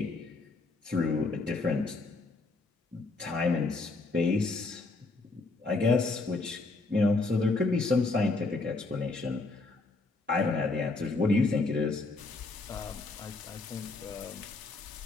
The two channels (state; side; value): quieter; right; 3.5 dB